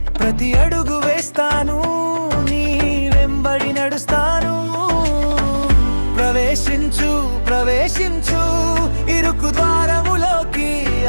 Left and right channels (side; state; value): both; inverted; correlation -1.00